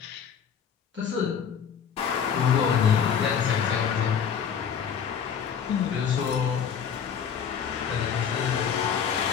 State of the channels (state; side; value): quieter; right; 7.5 dB